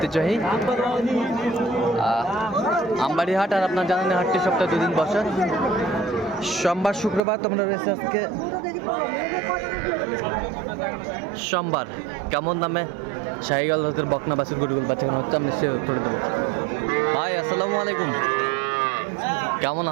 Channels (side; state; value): left; drops out; at 7.2 s